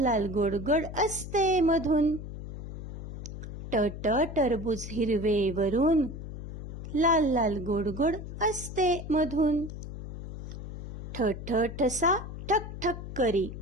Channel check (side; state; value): left; noise; hum, 9 dB below the sound